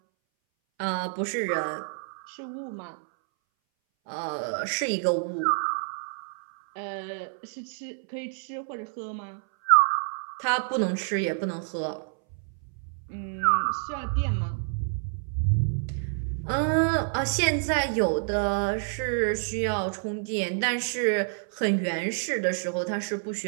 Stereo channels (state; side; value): silent; left; 59 dB below the other